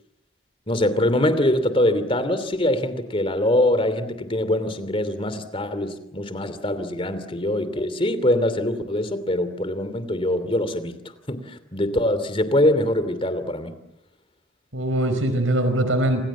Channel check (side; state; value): both; normal; correlation 0.53